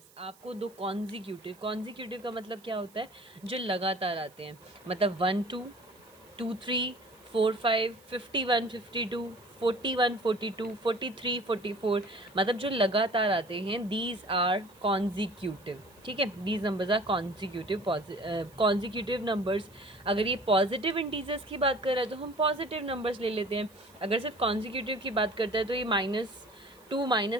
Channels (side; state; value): right; noise; hiss, 27 dB below the sound